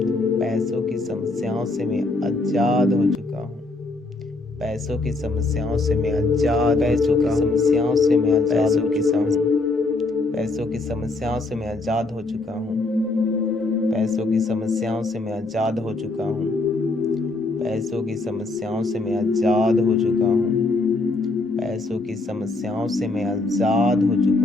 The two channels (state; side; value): quieter; right; 3.2 dB